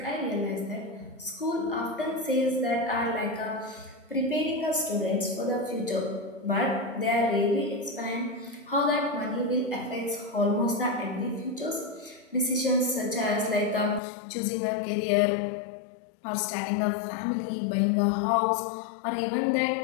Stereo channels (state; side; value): drops out; right; at 14.0 s